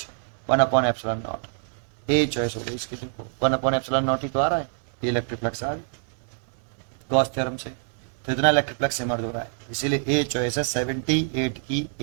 1/epsilon naught। A choice हो गई इसकी, देखो 1/epsilon naught ही तो आ रहा है, ये इलेक्ट्रिक फ्लक्स आ गया गॉस थ्योरम से। तो इतना इलेक्ट्रिक फ्लक्स इमर्ज हो रहा है, इसीलिए ए चॉइस है 78 की,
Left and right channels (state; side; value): silent; left; 61 dB below the other